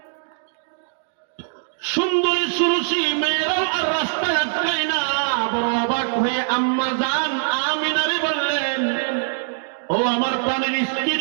সুন্দরী সুরুষি মেয়েরাও আর রাস্তায় আটকায় না। বড় অবাক হয়ে আম্মা জান আমিনারে বললেন, ও আমার প্রাণের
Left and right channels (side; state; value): left; silent; digital silence